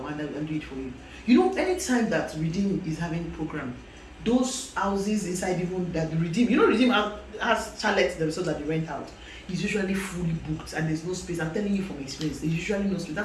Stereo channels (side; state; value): both; identical; correlation 1.00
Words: will do it for you. You know, anytime that Redeem is having a program, those houses inside even that the Redeem, Redeem has chalets themselves that they rent out. It's usually fully booked and there's no space. I'm telling you from experience, there's usually no space.